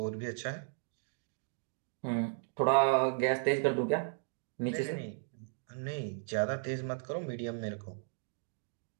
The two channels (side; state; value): left; silent; digital silence